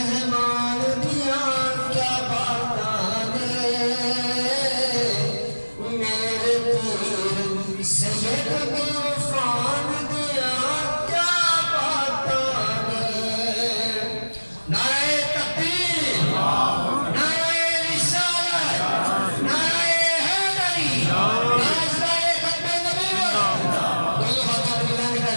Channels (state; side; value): inverted; both; correlation -1.00